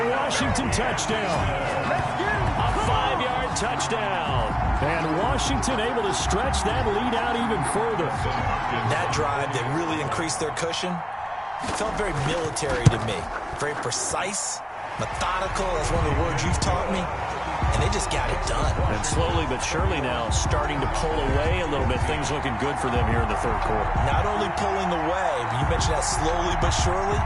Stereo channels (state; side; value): identical; both; correlation 1.00